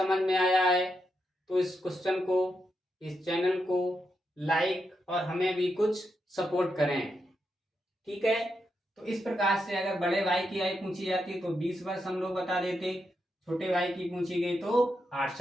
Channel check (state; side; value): normal; both; correlation 0.84